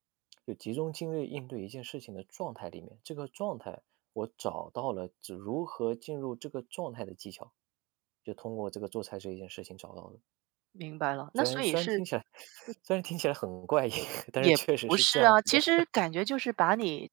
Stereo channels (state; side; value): quieter; left; 23.8 dB